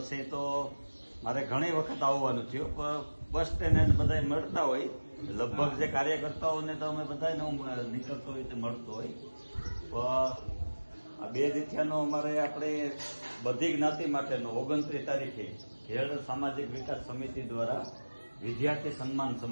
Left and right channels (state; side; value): inverted; both; correlation -1.00